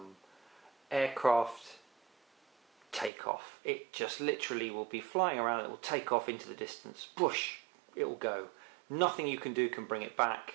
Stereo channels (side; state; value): left; drops out; at 3.1 s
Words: aircraft takeoff. It just literally will be flying around, it will take off into the distance, whoosh, it will go. Nothing you can do can bring it back.